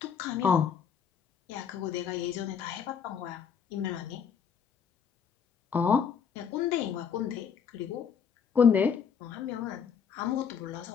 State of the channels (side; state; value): right; quieter; 7.0 dB